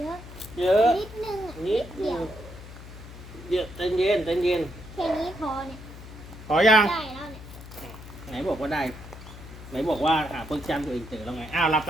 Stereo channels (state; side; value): noise; left; hum, 14 dB below the sound